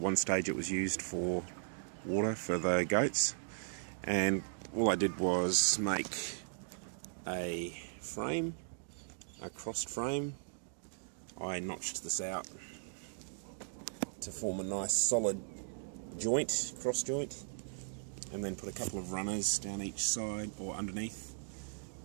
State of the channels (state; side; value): silent; left; digital silence